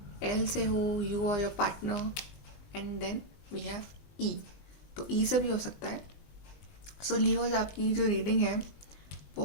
एल से हो, यू और your partner. And then we have E. तो ई से भी हो सकता है. सो लियोज, आपकी जो रीडिंग है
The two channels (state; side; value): late; right; 20 ms